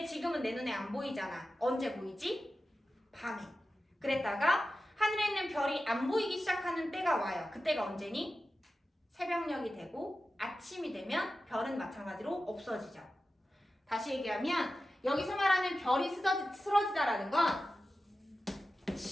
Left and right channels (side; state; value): both; normal; correlation 0.93